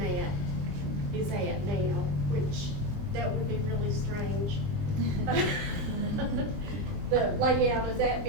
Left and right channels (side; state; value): left; late; 20 ms